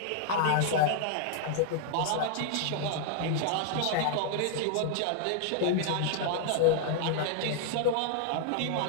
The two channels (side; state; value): both; different; correlation 0.00